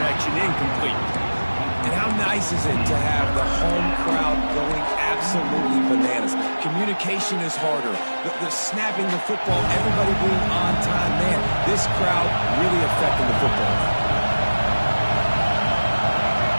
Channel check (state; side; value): inverted; both; correlation -1.00